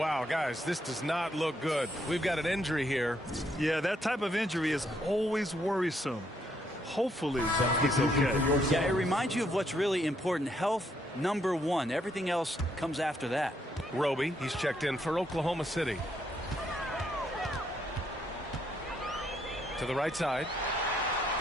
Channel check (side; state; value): both; normal; correlation 0.73